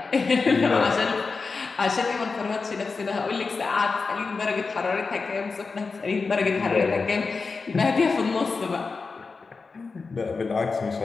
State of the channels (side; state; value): right; quieter; 4.4 dB